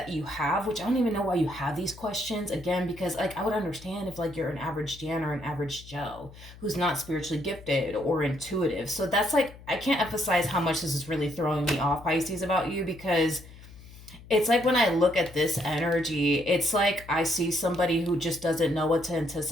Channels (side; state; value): left; noise; hum, 19 dB below the sound